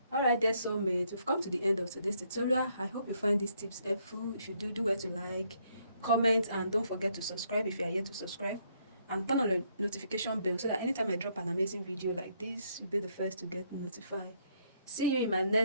Alright, dear soulmates, we've come to the end of today's tutorial. I hope you find these tips helpful. If you do well to like, comment, and don't forget to subscribe if you are yet to subscribe. And turn on the notification bell so that anytime I drop an amazing video like this, you'll be the first to get notified. See you in my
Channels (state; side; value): inverted; both; correlation -0.71